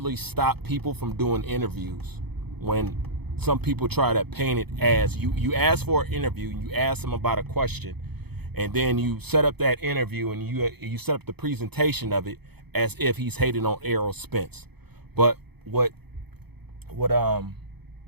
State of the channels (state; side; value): late; left; 0.97 ms